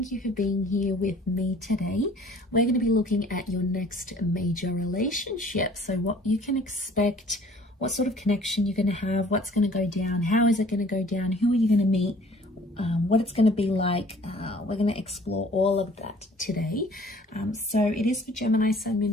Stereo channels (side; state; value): both; normal; correlation 0.52